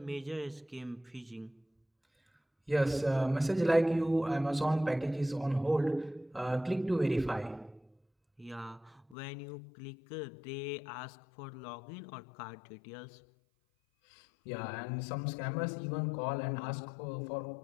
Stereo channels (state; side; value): drops out; right; at 9.2 s